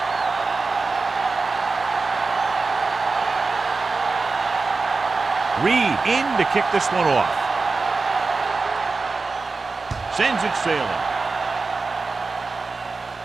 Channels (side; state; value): left; quieter; 4.1 dB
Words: Reed in to kick this one off. Sends it sailing.